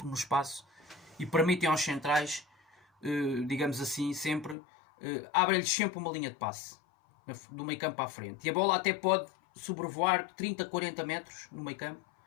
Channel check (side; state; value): right; drops out; at 4.5 s